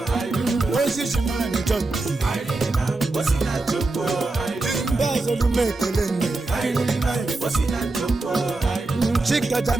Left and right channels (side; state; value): left; quieter; 3.2 dB